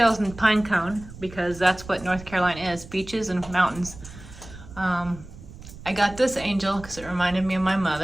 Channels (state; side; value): noise; right; rumble, 16 dB below the sound